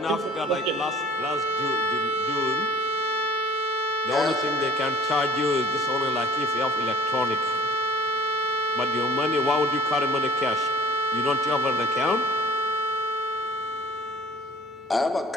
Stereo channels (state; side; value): normal; both; correlation 0.46